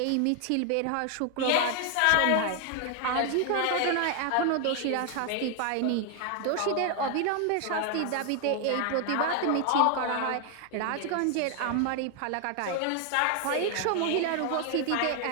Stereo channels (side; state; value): both; different; correlation 0.00